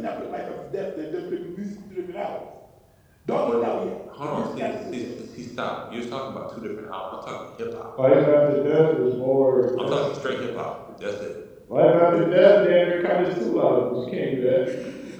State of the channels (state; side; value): identical; both; correlation 1.00